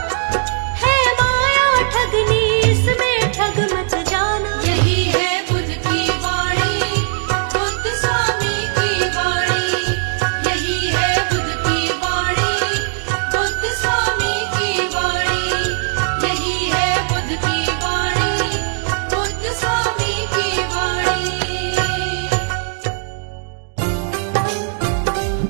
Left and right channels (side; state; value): left; silent; digital silence